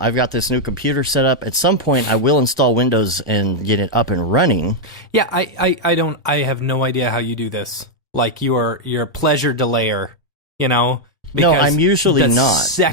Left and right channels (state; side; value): normal; both; correlation -0.01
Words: got this new computer set up. At some point, I will install Windows and get it up and running. Yeah, I have no idea how you do this. Like you're a pleasure delayer, No, I'm usually not.